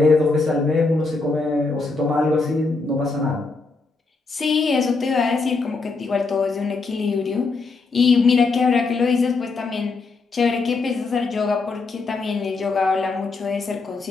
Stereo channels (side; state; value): right; quieter; 4.0 dB